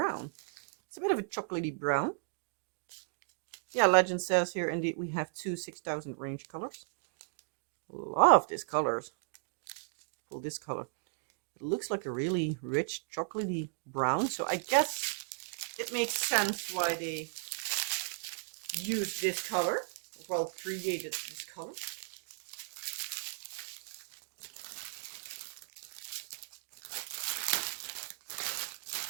It's a bit of a chocolatey brown. Yeah, legend says here indeed we have 2 6000 range colors. Love this colors. Well, this color. It looks like a really rich chocolatey brown. So I guess it makes sense why they used this color. Well, created this color.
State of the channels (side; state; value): left; silent; digital silence